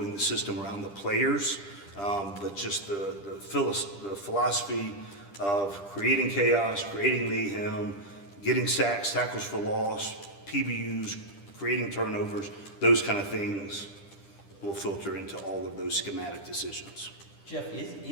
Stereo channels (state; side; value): late; right; 10 ms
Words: the system around the players, but just the philosophy of creating chaos, creating mayhem, getting sacks, tackles for loss, PBUs, creating turnovers, those kind of things will filter into all of those schematic decisions. Geoff,